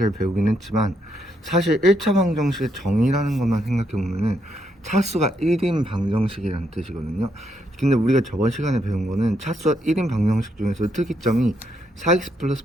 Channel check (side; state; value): both; normal; correlation 0.77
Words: 배우긴 했지만, 사실 1차 방정식의 정의라는 것만 생각해보면은 차수가 1인 방정식이라는 뜻이거든요. 근데 우리가 저번 시간에 배운 거는 차수가 1인 방정식 중에서 특이점이 4x 플러스